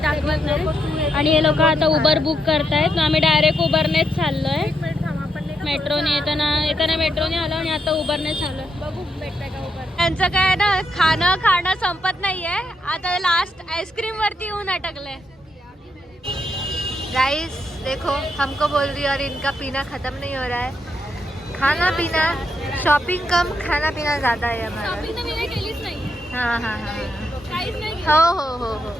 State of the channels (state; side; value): normal; both; correlation 0.80